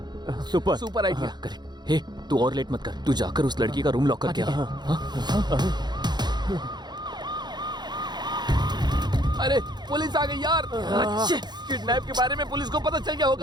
सुपर आइडिया। करेक्ट। हे, तू और लेट मत कर। तू जाकर उस लड़की का रूम लॉक करके आ। अरे पुलिस आ गई यार। किडनैप के बारे में पुलिस को पता चल गया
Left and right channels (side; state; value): left; late; 0.21 ms